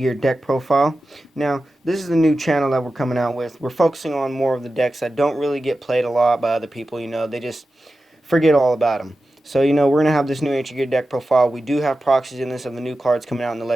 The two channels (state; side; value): normal; both; correlation 0.93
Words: deck profile. Now, this is the new channel that we're coming out with. We're focusing on more of the decks that don't really get played a lot by other people. They just forget all about them. So, we're going to have this new Ancient Gear deck profile. We do have proxies in this of the new cards coming out in the